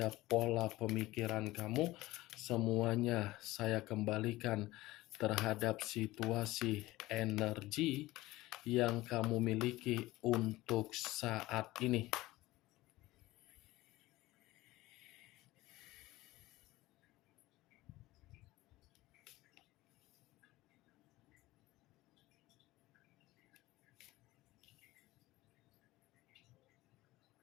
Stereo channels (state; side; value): quieter; right; 18.3 dB